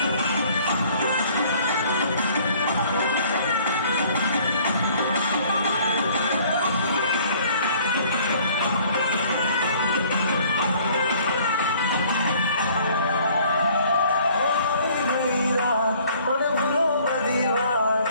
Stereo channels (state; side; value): inverted; both; correlation -0.57